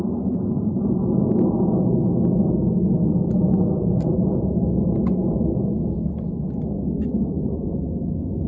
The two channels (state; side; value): identical; both; correlation 1.00